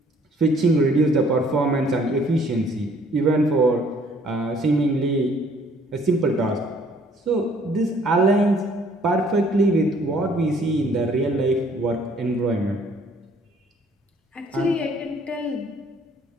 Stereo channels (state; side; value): normal; both; correlation 0.60